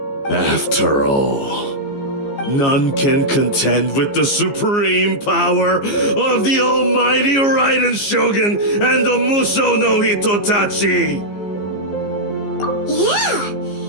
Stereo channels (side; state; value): right; late; 15 ms